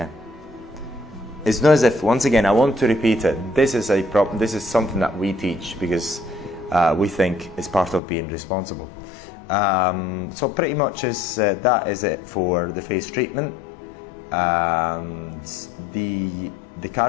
It's not as if, once again, I want to repeat it. This is something that we teach because we think it's part of being responsible. So pretty much that is it for the face treatment. And the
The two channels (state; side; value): drops out; right; at 8.0 s